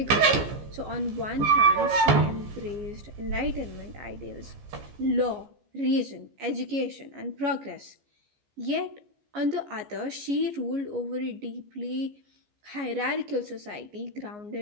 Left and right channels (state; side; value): late; left; 14 ms